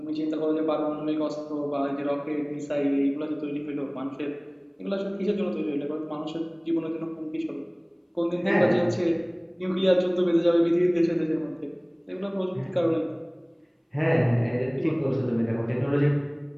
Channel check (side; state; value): both; identical; correlation 1.00